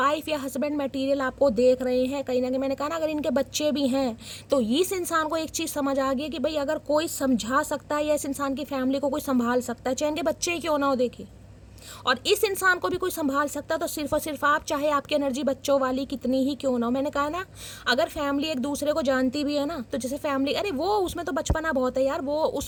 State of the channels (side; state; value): both; identical; correlation 1.00